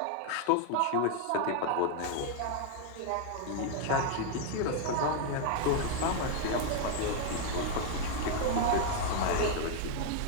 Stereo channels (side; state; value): both; different; correlation 0.00